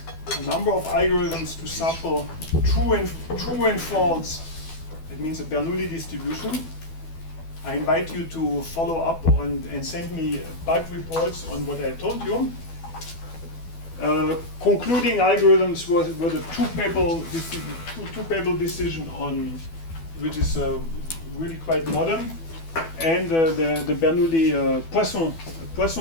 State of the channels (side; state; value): right; late; 12 ms